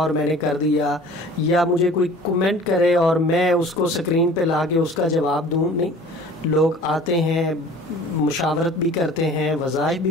میں نے کر دیا، یا مجھے کوئی کمنٹ کرے اور میں اس کو سکرین پہ لا کے اس کا جواب دوں. نہیں، لوگ آتے ہیں، مشاورت بھی کرتے ہیں، وظائف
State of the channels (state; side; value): normal; both; correlation 0.46